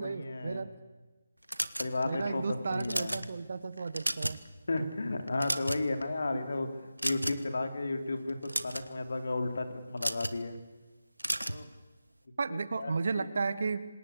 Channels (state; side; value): inverted; both; correlation -0.92